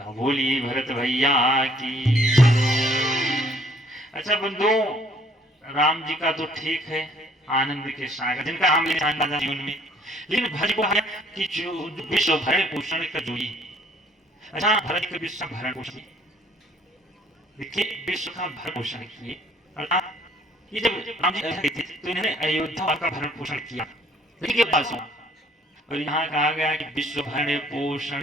बोलिए भरत भैया की। अच्छा बंधु, राम जी का तो ठीक है आनंद के सागर जिनका हम जीवन में, लेकिन भरत को है कि जो विश्व भरण पोषण कर जोई। अच्छा भरत के विश्व भरण पोषण, देखिए विश्व का भरण पोषण किए, अर्थात ये जब राम जी अयोध्या गए थे तो इन्होंने अयोध्या का भरण पोषण किया, लेकिन ये बात सुना और यहाँ कहा गया कि विश्व भरण पोषण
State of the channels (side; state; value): both; normal; correlation 0.61